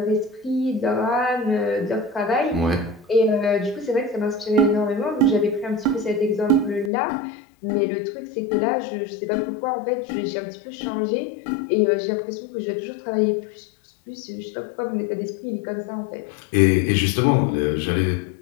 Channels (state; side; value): drops out; right; at 6.9 s